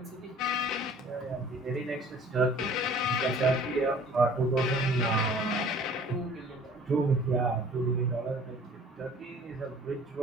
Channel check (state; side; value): normal; both; correlation 0.50